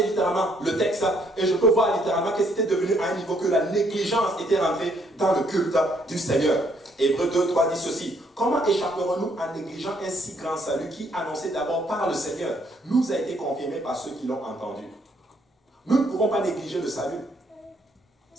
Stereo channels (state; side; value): normal; both; correlation 0.68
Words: littéralement le texte et je peux voir littéralement que c'était devenu à un niveau que la négligence était rentrée dans le culte du Seigneur. Hébreux 2:3 dit ceci. Comment échapperons-nous en négligeant un si grand salut qui, annoncé d'abord par le Seigneur, nous a été confirmé par ceux qui l'ont entendu? Nous ne pouvons pas négliger le salut.